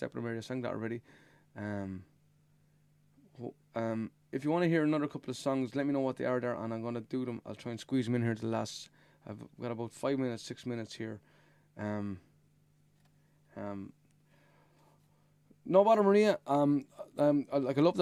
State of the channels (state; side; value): identical; both; correlation 1.00